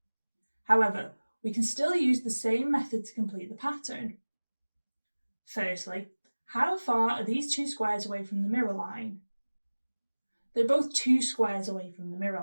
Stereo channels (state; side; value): inverted; both; correlation -1.00